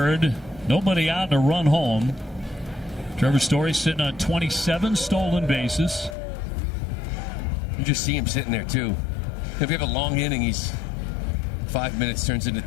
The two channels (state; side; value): drops out; right; at 6.2 s